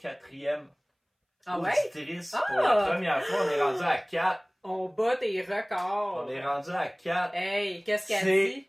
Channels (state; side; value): identical; both; correlation 1.00